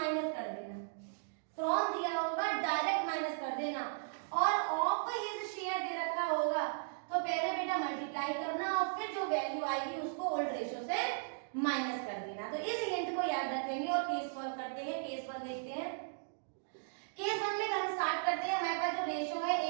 कर देना। फ्रॉम दिया होगा डायरेक्ट माइनस कर देना, और ऑफ हिज शेयर दे रखा होगा तो पहले बेटा मल्टीप्लाई करना और फिर जो वैल्यू आएगी उसको ओल्ड रेशो से माइनस कर देना। तो इस हिंट को याद रखेंगे और केस सॉल्व करते हैं। केस 1 देखते हैं। केस 1 में हम स्टार्ट करते हैं। हमारे पास जो रेशो है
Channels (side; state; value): left; silent; digital silence